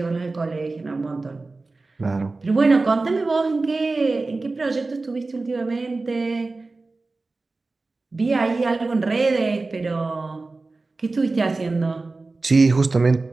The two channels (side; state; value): left; quieter; 3.5 dB